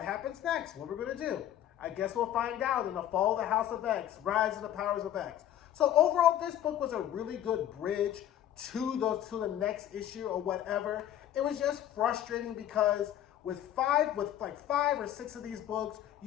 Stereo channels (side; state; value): right; quieter; 11.6 dB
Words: happens next? What are we going to do? I guess we'll find out in the Fall of the House of X, Rise of the Powers of X. So overall, this book was a really good bridge to the next issue or whatever. It was just frustrating because with five or six of these books,